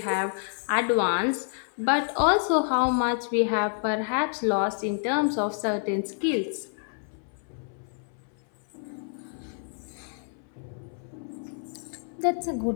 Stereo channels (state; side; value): silent; right; 59 dB below the other